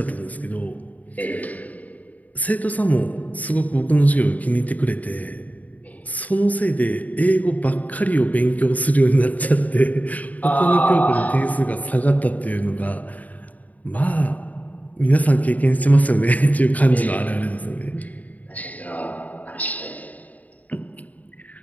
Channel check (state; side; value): late; right; 0.074 ms